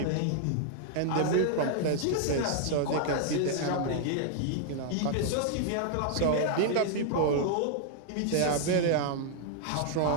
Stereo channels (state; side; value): different; both; correlation 0.00